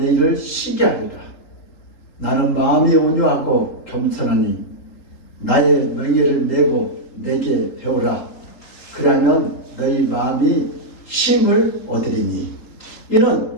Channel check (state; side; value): late; right; 3.8 ms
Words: 쉬게 하리라. 나는 마음이 온유하고 겸손하니 나의 명예를 메고 내게 배우라. 그러면 너희 마음이 쉼을 얻으리니 이는